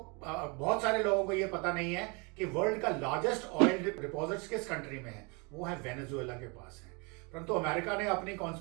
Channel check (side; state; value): left; quieter; 30.8 dB